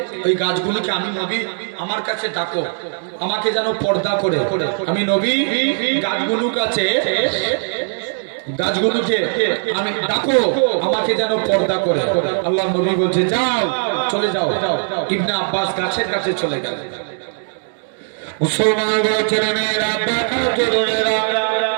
ওই গাছগুলোকে আমি নবী আমার কাছে ডাকো, আমাকে যেন পর্দা করে। আমি নবী গাছগুলোর কাছে, গাছগুলোকে আমি ডাকো, আমাকে যেন পর্দা করে। আল্লাহ নবী বলছে যাও, চলে যাও। ইবনে আব্বাস গাছের কাছে চলে গেল। মুসলমান ছেলেমেয়েরা, তরুণেরা,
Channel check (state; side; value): silent; left; digital silence